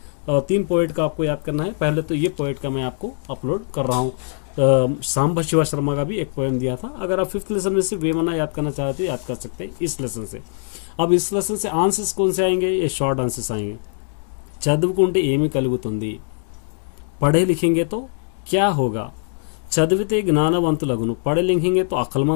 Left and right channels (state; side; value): silent; right; digital silence